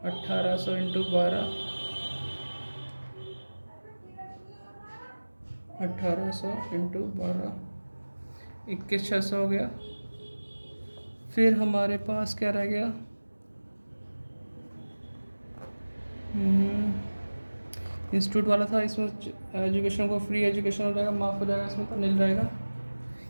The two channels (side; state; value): both; inverted; correlation -1.00